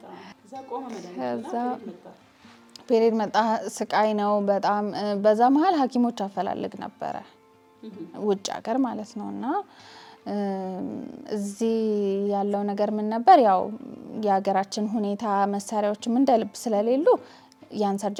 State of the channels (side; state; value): both; identical; correlation 1.00